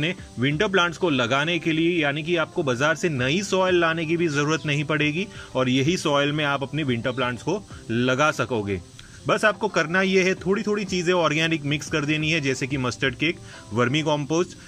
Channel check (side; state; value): both; identical; correlation 1.00